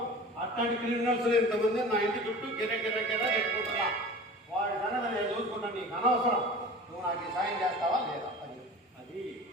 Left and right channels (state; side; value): normal; both; correlation 0.38